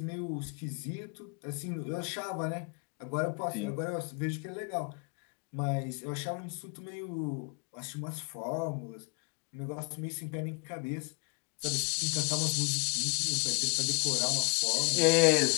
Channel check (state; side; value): quieter; right; 28.6 dB